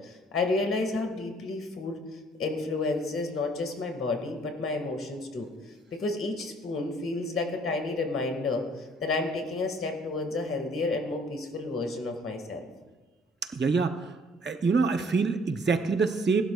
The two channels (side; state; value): both; normal; correlation 0.59